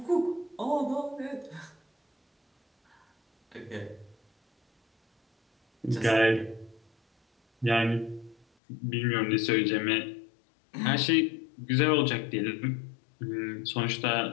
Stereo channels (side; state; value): right; drops out; at 8.5 s